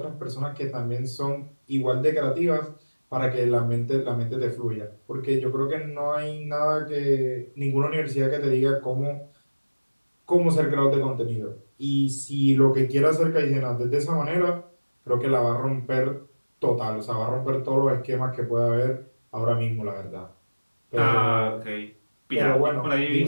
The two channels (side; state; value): both; inverted; correlation -1.00